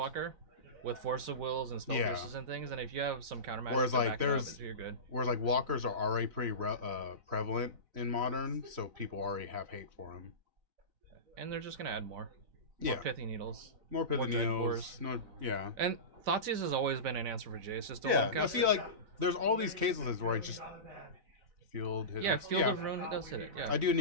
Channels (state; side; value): late; left; 4.0 ms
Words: with Force of Wills and Spell Pierces and things, and if you have some countermeasures Whereas, to like, back it up, you're good. Whereas, like, Walkers are already pretty prevalent in Modern, so people already have hate for them. And they're just going to add more. Yeah. More Pithy Needles. More Pithy Dread Needles. Cores. No, yeah. And Thoughtseize has always been an answer for Jace. Just don't Yeah, look no, up. see, like, there's all these cases where I just... Field hit. Yeah, Field of Ruin, it does hit it, yeah. I do